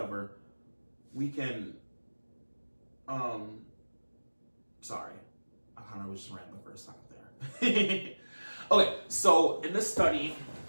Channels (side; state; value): both; inverted; correlation -1.00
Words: we can, sorry, I kind of was just rambling for a second there. Okay, so in this study,